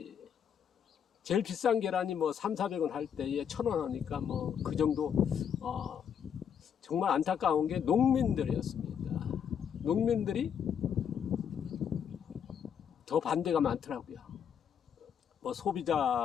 제일 비싼 계란이 뭐 300~400원 할 때에 1,000원 하니까 뭐 그 정도 정말 안타까운 게 농민들이었습니다. 농민들이 더 반대가 많더라고요. 뭐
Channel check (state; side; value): quieter; right; 8.1 dB